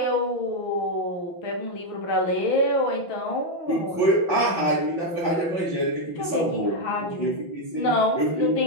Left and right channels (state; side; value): late; right; 5.8 ms